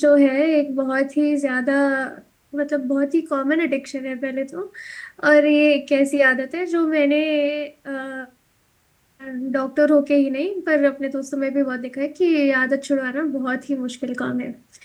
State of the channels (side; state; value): both; identical; correlation 1.00